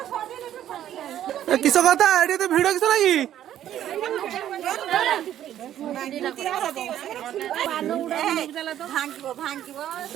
किस कथा ये तो भिड़ किस लगी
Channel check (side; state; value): left; quieter; 11.5 dB